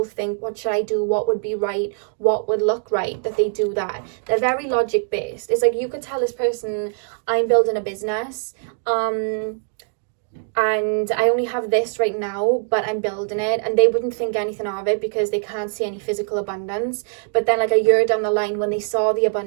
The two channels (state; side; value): silent; left; 57 dB below the other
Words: think, what should I do, what would be right, what would look right, that they do that. They're very logic based. It's like you could tell this person, I'm building a business, and I only have this right now, but I'm building it, and they wouldn't think anything of it because they can't see any physical abundance. But then like a year down the line, when they saw the